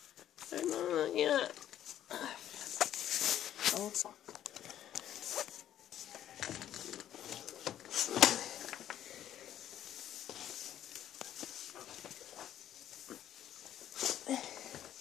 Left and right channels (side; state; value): right; quieter; 11.3 dB